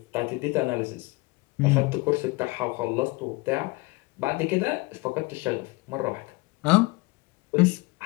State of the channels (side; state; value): right; quieter; 24.6 dB